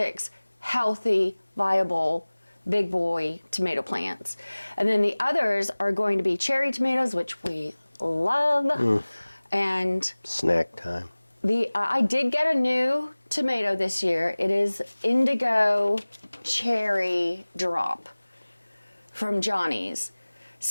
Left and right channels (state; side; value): inverted; both; correlation -1.00